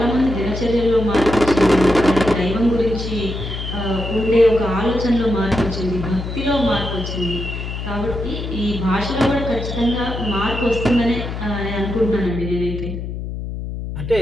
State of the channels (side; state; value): left; noise; hum, 6 dB below the sound